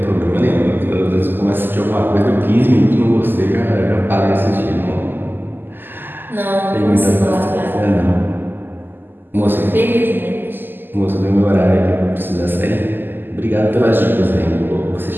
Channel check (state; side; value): late; left; 0.093 ms